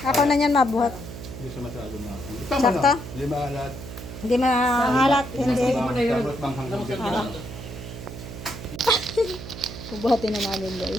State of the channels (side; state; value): right; noise; hum, 11 dB below the sound